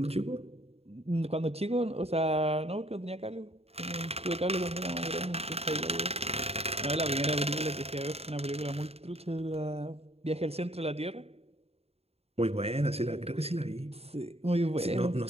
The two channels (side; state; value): left; late; 0.29 ms